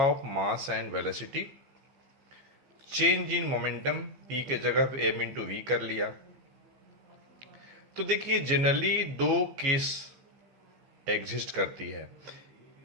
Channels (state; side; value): late; left; 15 ms